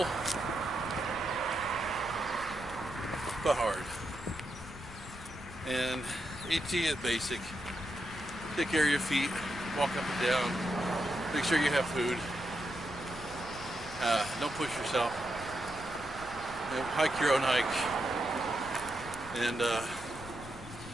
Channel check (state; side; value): noise; left; rumble, 15 dB below the sound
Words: but hard. And AT is basic. Take care of your feet, walk up and down, make sure you have food. Don't push yourself. You know, hike your own hike. And